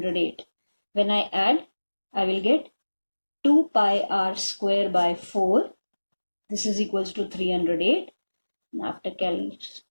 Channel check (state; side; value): inverted; both; correlation -1.00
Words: When I add, I will get 2 pi r square by 4. This is equals to 308. And after